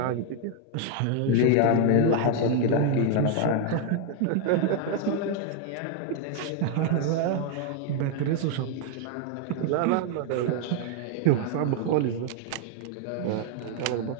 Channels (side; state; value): both; different; correlation 0.00